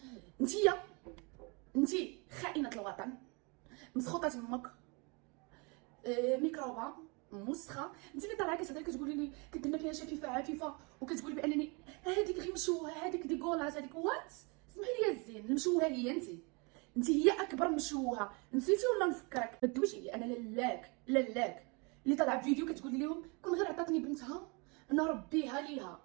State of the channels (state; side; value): quieter; left; 30.8 dB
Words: انتي خائنه الوطن، مسخوطه تمك، ميكروبه مسخه. انت اللي طالعه كتهضري كتقولي لي كديرنا فيها شفيفه عفيفه، وكتقولي بانني هذيك غير مشوهه، هذيك ديكولاس، هذيك وات. اسمحي لي الزين، المشوهه هي انت هي اكبر مشوهه. نسيتي ولا نفكرك؟ ما تدويش عليا انا لالاك اللي طالعه في فيديو كتقولي لهم كون غير عطاتني بنتها نربيها ليها.